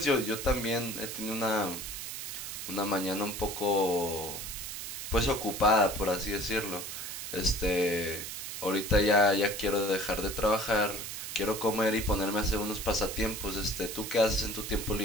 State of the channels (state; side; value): noise; right; hiss, 7 dB below the sound